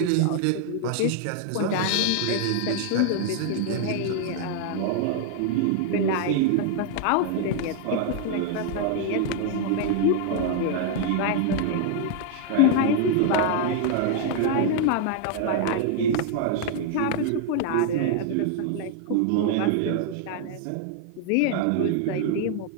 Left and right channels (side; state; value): both; different; correlation 0.00